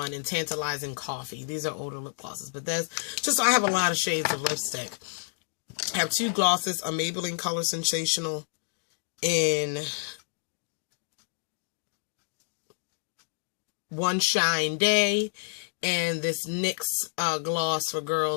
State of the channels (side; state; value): right; silent; digital silence